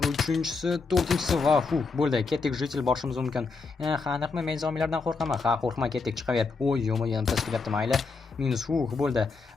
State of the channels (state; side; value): quieter; right; 4.4 dB